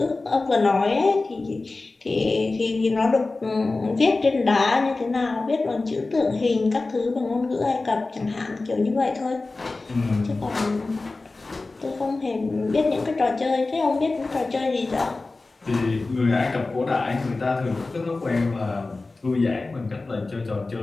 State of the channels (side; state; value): right; quieter; 3.4 dB